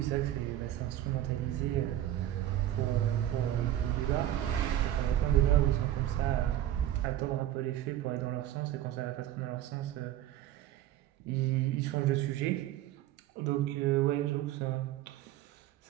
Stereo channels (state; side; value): quieter; left; 12.8 dB